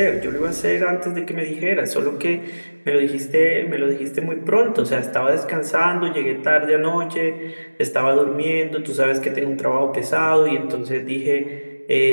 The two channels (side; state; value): both; inverted; correlation -1.00